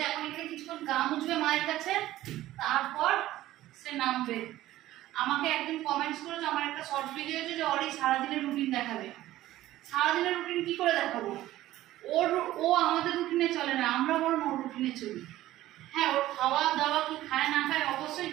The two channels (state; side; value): quieter; left; 15.0 dB